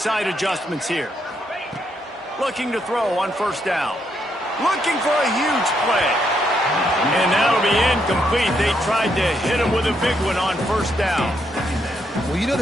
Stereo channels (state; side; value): normal; both; correlation 0.77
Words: adjustments here. Looking to throw on 1st down. Looking for a huge play. And that'll be incomplete. They tried to hit him with a big one on 1st down. Well, you know